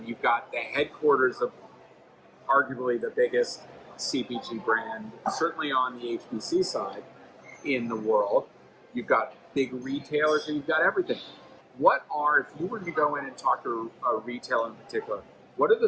You've got the headquarters of arguably the biggest CPG brand, certainly on the HBC side in the world. You've got big retailers, and you've got everything. What are, if you were to go in and talk to a retailer in particular, what are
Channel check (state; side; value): identical; both; correlation 1.00